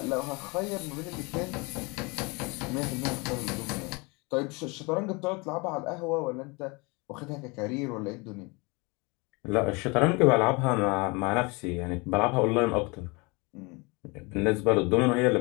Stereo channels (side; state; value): right; quieter; 27.9 dB